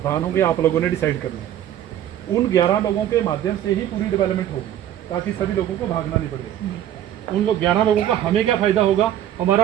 होंगे, आप लोगों ने डिसाइड करना है। उन 11 लोगों के माध्यम से ही पूरी डेवलपमेंट होगी, ताकि सभी लोगों को भागना नहीं पड़े। उन लोग 11 लोगों का हमें क्या फ़ायदा होगा,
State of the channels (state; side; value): quieter; left; 11.4 dB